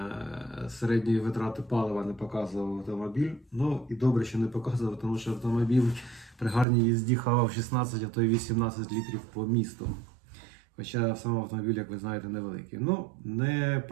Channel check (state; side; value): drops out; left; at 6.7 s